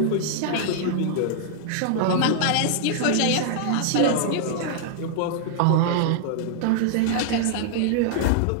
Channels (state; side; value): different; both; correlation -0.01